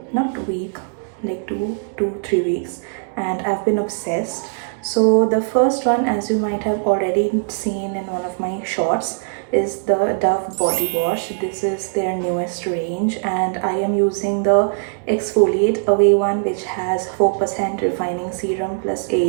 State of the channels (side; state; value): left; silent; digital silence